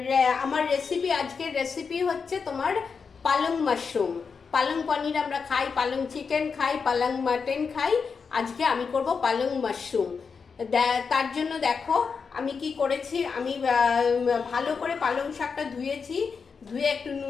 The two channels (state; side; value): quieter; right; 5.5 dB